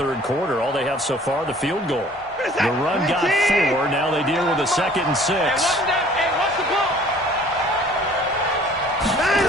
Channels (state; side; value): normal; both; correlation 0.52